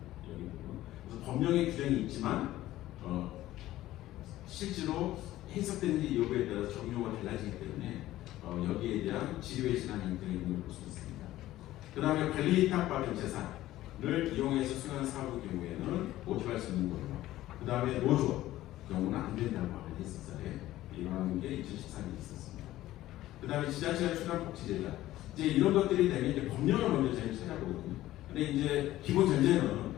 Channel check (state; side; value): quieter; right; 15.1 dB